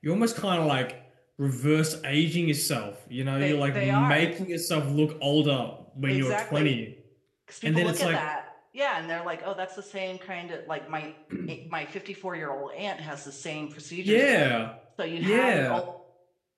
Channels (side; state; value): both; identical; correlation 1.00